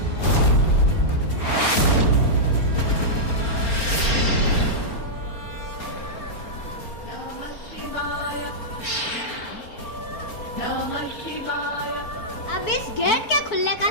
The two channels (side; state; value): right; late; 4.3 ms